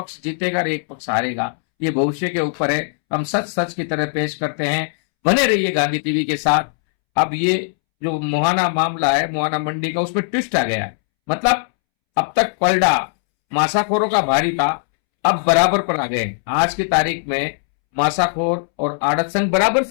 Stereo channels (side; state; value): right; silent; 66 dB below the other